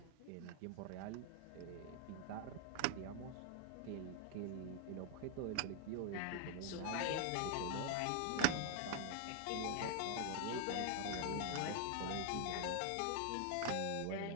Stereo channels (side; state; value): both; different; correlation 0.00